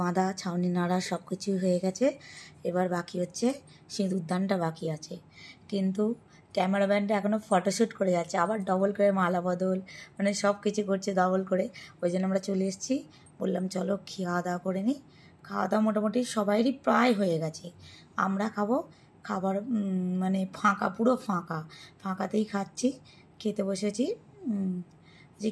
বাঁধা, ছাউনি নাড়া সব কিছুই হয়ে গেছে। এবার বাকি হচ্ছে সিঁদুরদানটা বাকি আছে, কিন্তু ক্যামেরাম্যানটা এখনও ফটোশ্যুট করে যাচ্ছে, আবার ডবল করে মালা বদল, মানে সব কিছু করছে ডবল করে। ওই জন্য আমরা চলে এসেছি, বললাম চলো খাওয়া দাওয়া করে নিই। খাওয়া দাওয়া মোটামুটি সবাইরই প্রায় হয়ে গেছে, আমরা খাবো, খাবার মানে ফাঁকা, পুরো ফাঁকাতেই খাচ্ছি, খেতে বসেছি। যে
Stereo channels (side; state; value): both; identical; correlation 1.00